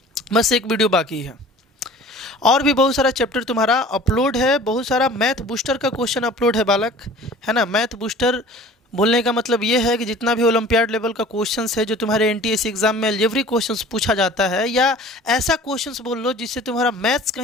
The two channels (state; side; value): normal; both; correlation 0.45